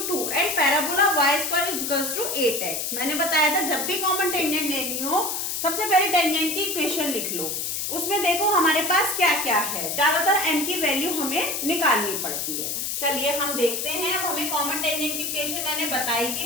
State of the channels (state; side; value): noise; left; hiss, 2 dB below the sound